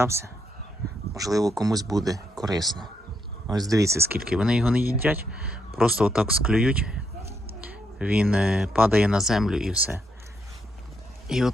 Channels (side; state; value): both; normal; correlation 0.78